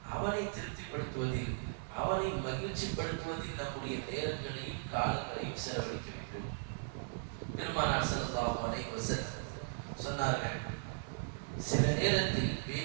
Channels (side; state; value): left; silent; 53 dB below the other